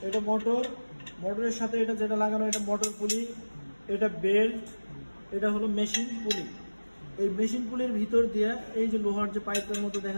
এটা মোটরের সাথে এটা যেটা লাগানো এটা মোটর পুলি, এটা বেল্ট, এটা হলো মেশিন পুলি। এই মেশিন পুলির ভিতর দিয়ে এই যে লোহার যে পাইপের মতো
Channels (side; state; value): both; inverted; correlation -1.00